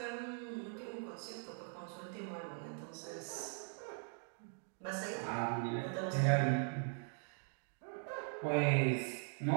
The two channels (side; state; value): left; silent; 50 dB below the other